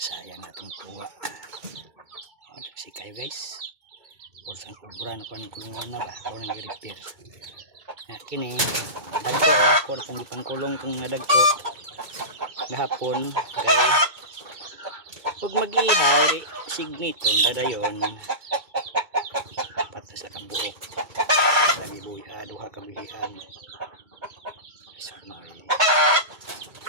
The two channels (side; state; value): left; late; 2.2 ms